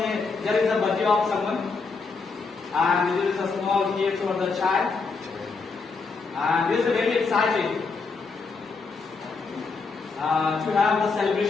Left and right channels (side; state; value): right; quieter; 4.5 dB